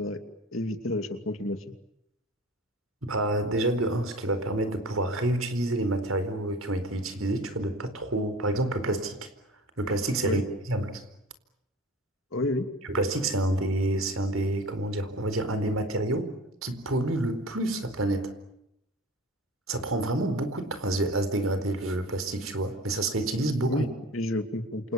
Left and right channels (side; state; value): both; normal; correlation 0.39